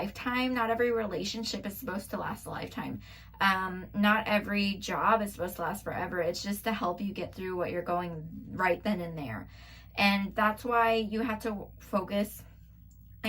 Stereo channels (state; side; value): identical; both; correlation 1.00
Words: Not every relationship is supposed to last a lifetime. Not every job is supposed to last forever. It's just to help you get through what you're going right then and there. And that's why you have to focus